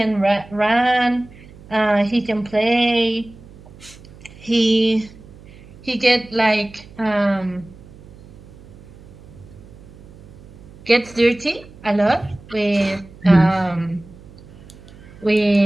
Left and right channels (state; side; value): noise; right; hum, 21 dB below the sound